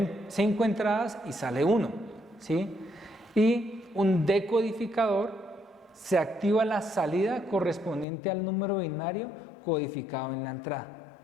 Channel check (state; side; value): drops out; right; at 8.1 s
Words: 5 entradas y sale 1, ¿sí? Y un decodificador se activa la salida correspondiente al número binario codificado en la entrada,